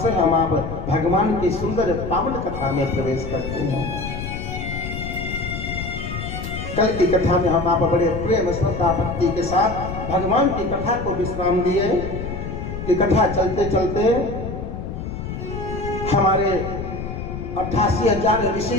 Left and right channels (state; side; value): noise; left; rumble, 7 dB below the sound